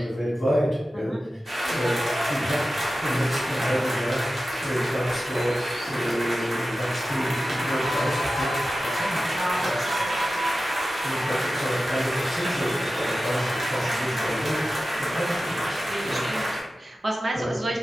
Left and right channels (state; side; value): normal; both; correlation 0.94